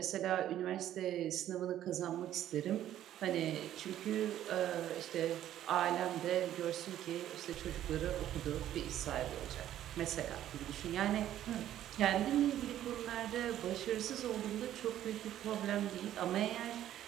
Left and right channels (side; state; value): left; quieter; 12.0 dB